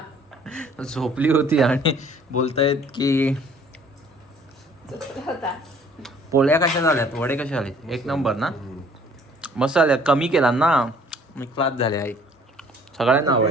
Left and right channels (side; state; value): both; normal; correlation 0.56